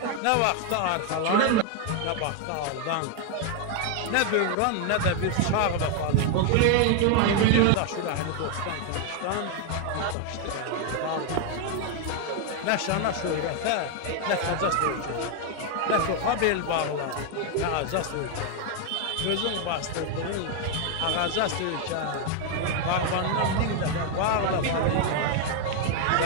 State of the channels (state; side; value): different; both; correlation 0.01